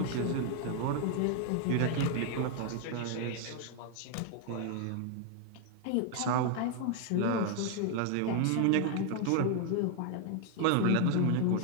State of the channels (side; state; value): both; different; correlation 0.00